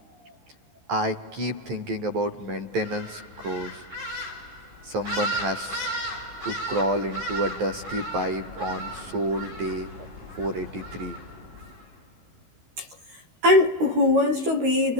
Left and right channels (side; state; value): left; late; 13 ms